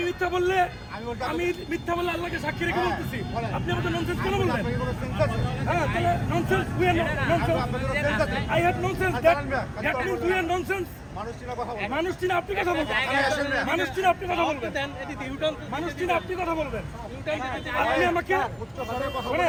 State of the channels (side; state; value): both; identical; correlation 1.00